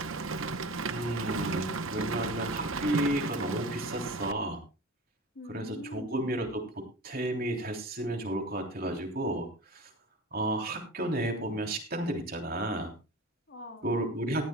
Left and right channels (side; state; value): both; normal; correlation 0.35